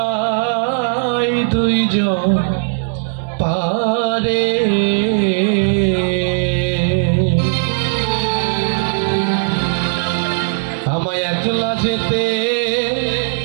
দুইজন পারে আমায় একলা যেতে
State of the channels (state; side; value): silent; left; 68 dB below the other